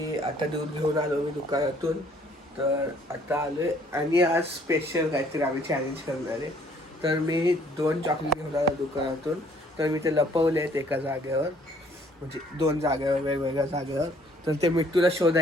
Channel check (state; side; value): normal; both; correlation 0.61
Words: आता दूध घेऊन आलो मी दुकानातून. तर आता आलो आहे आणि आज स्पेशल काहीतरी आम्ही चॅलेंज करणार आहे. तर मी 2 चॉकलेट घेऊन आलो दुकानातून. तर मी ते लपवले आहेत एका जागेवर, म्हणजे 2 जागेवर, वेगवेगळ्या जागेवर. तर ते मिट्टूला